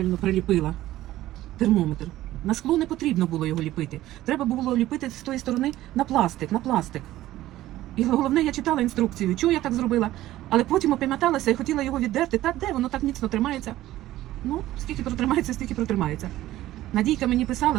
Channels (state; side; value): quieter; left; 15.0 dB